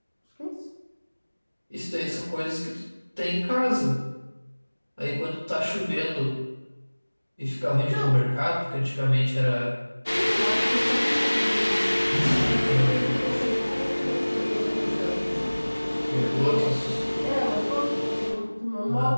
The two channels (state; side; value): inverted; both; correlation -1.00